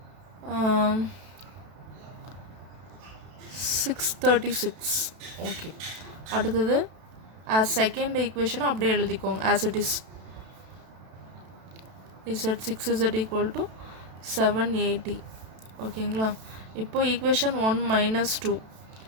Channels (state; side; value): late; left; 32 ms